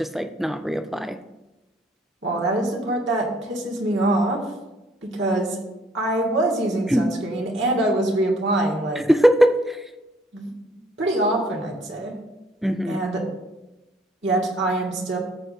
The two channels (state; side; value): normal; both; correlation 0.63